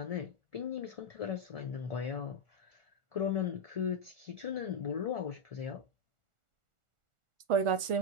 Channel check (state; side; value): late; left; 1.4 ms